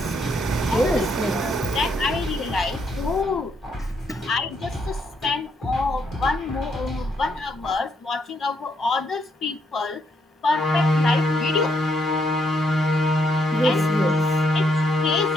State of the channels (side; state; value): both; normal; correlation 0.74